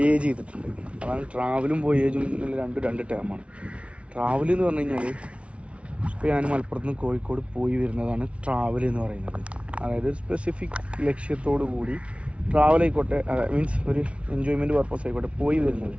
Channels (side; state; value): left; late; 0.061 ms